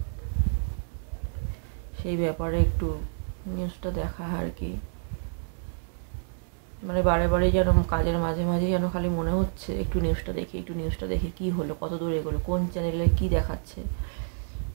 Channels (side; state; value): left; silent; digital silence